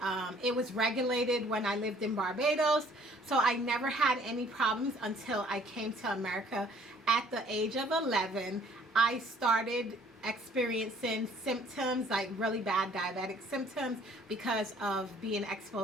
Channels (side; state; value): both; normal; correlation 0.58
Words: It was regulated when I lived in Barbados, so I never had any problems until I came to America at the age of 11. I started experiencing symptoms, like really bad diabetic symptoms, because of being